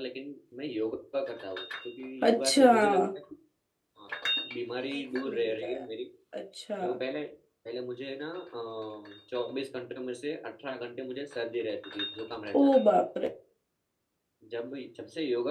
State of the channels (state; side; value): identical; both; correlation 1.00